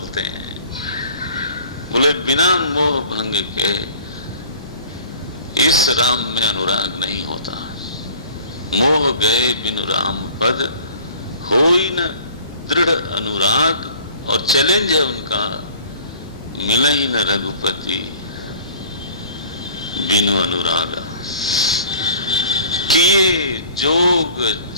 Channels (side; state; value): both; inverted; correlation -0.47